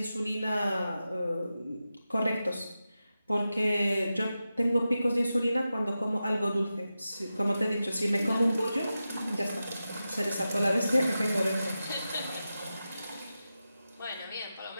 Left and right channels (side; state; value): both; inverted; correlation -0.92